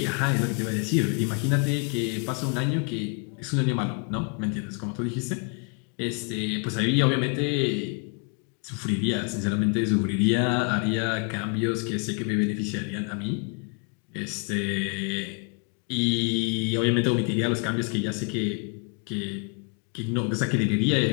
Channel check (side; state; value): right; quieter; 36.2 dB